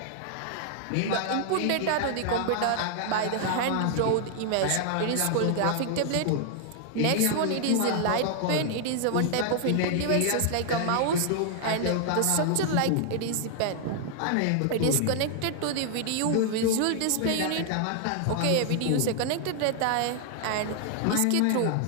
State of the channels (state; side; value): different; both; correlation 0.00